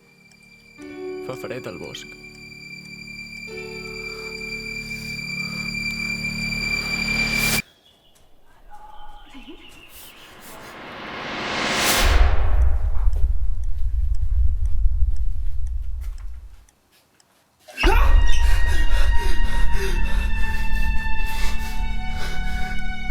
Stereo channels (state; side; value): identical; both; correlation 1.00